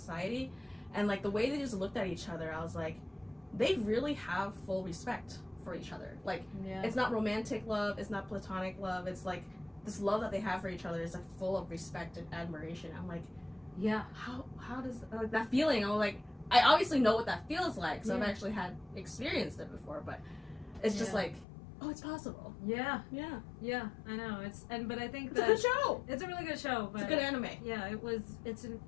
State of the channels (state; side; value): drops out; right; at 21.5 s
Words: And like the way they just looked at each other, I was like, they really have full respect for each other. Like, it's not romantic love, it's not platonic love, it's like this love that they have for each other is like full of respect and admiration. I'm like, how does like that feeling? I'm like, I obviously know what that feels like, so I've actually experienced it before, but it's just like, oh, it's possible. Yeah, I know. But I think it's a good show. It's a really good show. But it's a good anime. Yeah,